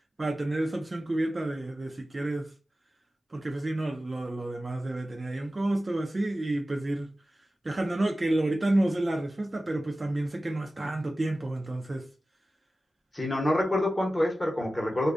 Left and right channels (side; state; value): both; normal; correlation 0.95